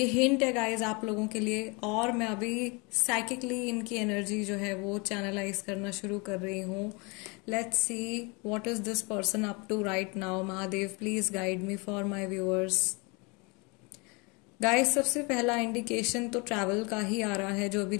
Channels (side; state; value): right; quieter; 29.3 dB